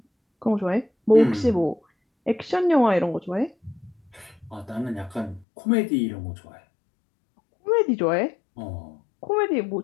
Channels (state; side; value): drops out; right; at 5.5 s